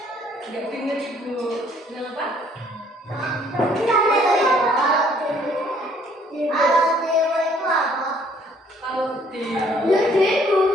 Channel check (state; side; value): normal; both; correlation 0.61